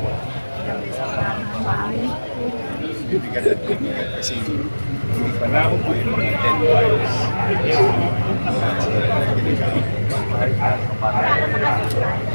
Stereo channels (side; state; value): both; inverted; correlation -1.00